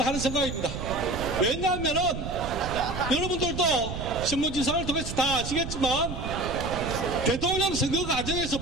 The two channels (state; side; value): noise; right; rumble, 7 dB below the sound